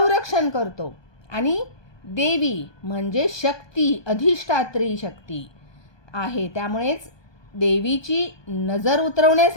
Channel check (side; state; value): right; late; 1.2 ms